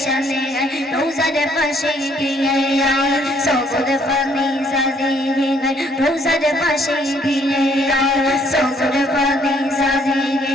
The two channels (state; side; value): normal; both; correlation 0.65